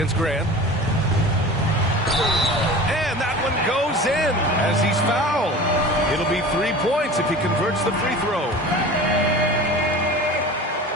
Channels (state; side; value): normal; both; correlation 0.36